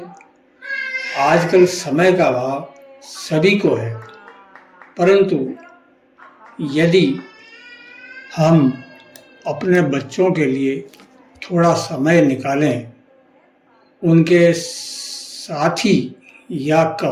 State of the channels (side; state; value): both; identical; correlation 1.00